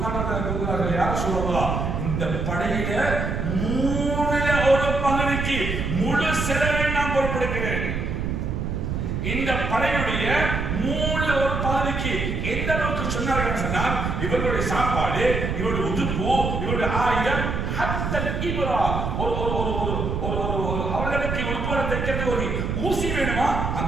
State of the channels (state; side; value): noise; right; rumble, 2 dB below the sound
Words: ரலியல்லாஹு கூறுகிறார்கள், யார சொல்லலாம், இந்த படையில 1/3 பகுதிக்கு முழு செலவை நான் பொறுப்பெடுக்கிறேன். இந்த படையுடைய 1/3 பகுதிக்கு எந்த அளவுக்கு சொன்னார்கள் சொன்னால், இவர்களுடைய சாப்பாடு, இவருடைய உடுப்பு, இவருடைய ஆயுதம், ஹத்தல் இப்ரா, அவர்களுக்கு உடுப்பு தைக்கிறது ஒரு ஊசி வேணுமா,